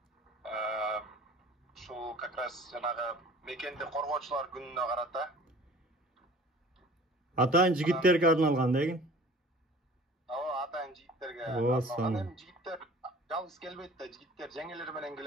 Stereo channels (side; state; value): both; normal; correlation 0.47